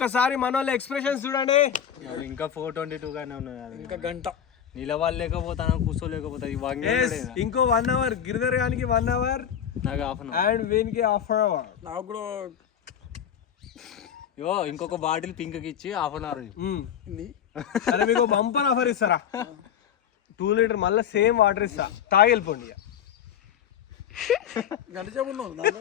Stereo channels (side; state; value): right; quieter; 9.0 dB